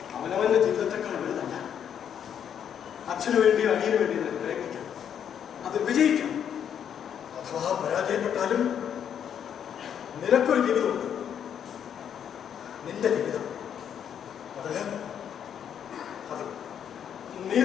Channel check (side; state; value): right; quieter; 8.7 dB